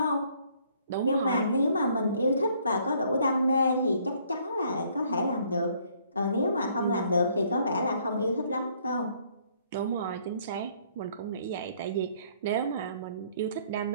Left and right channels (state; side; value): inverted; both; correlation -0.64